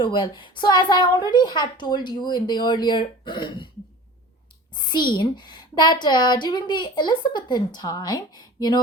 well. So as I already had told you in the earlier scene, that during the Elizabethan time,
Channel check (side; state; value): both; normal; correlation 0.40